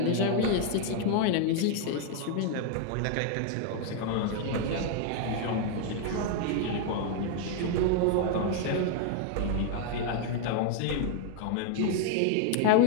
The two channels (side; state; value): both; different; correlation 0.00